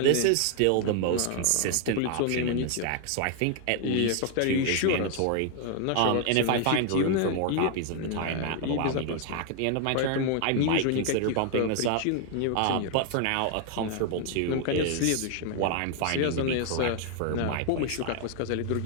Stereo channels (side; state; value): both; different; correlation 0.00